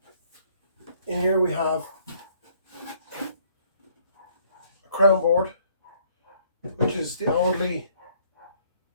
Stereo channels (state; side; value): inverted; both; correlation -0.63